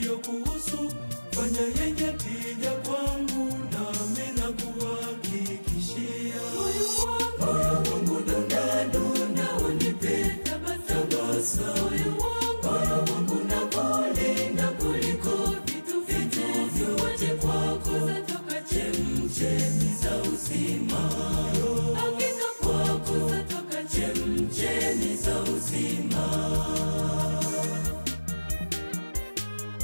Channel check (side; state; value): both; inverted; correlation -1.00